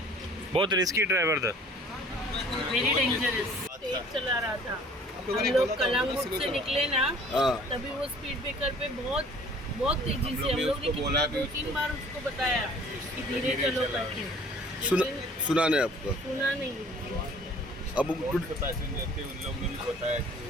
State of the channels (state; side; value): normal; both; correlation 0.52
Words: बहुत रिस्की ड्राइवर था। वेरी डेंजरस, तेज चला रहा था। हम लोग कलांगुट से निकले ना, तभी वो स्पीड ब्रेकर पे बहुत तेजी से हम लोग ने कितना 2-3 बार उसको बताया कि धीरे चलो करके, सुना नहीं आपको? सुना नहीं। अब पैसेंजर थे उन लोगों ने भी बताया